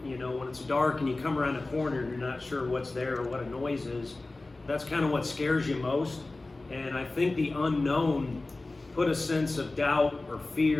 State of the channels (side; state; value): right; quieter; 3.1 dB